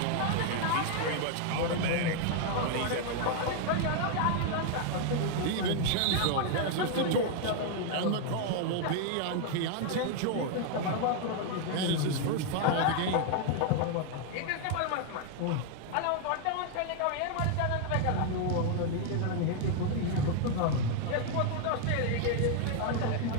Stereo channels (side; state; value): both; different; correlation 0.00